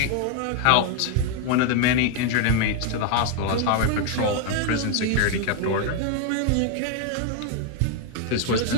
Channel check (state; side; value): different; both; correlation 0.01